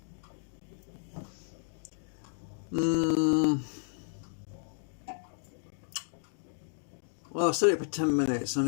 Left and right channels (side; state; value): right; silent; digital silence